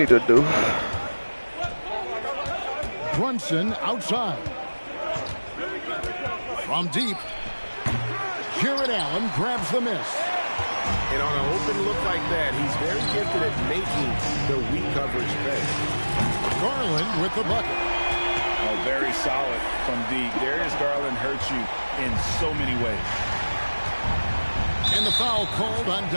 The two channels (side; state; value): both; inverted; correlation -1.00